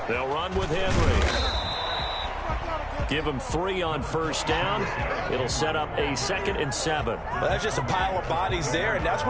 They'll run with Henry. Give him 3 on first down. It'll set up a 2nd and 7. Well, that's just a pile of bodies there, and that's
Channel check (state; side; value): identical; both; correlation 1.00